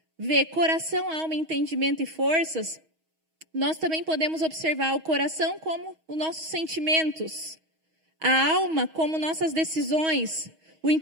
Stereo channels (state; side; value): late; left; 6.3 ms